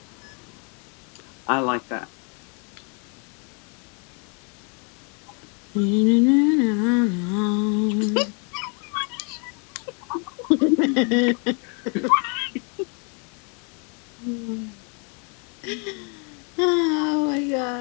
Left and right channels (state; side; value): quieter; right; 36.9 dB